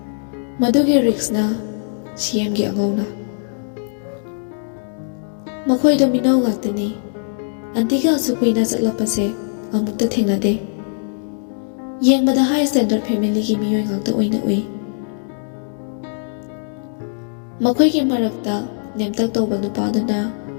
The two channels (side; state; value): right; silent; digital silence